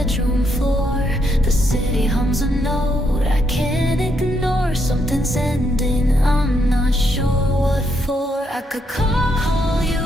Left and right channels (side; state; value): both; normal; correlation 0.77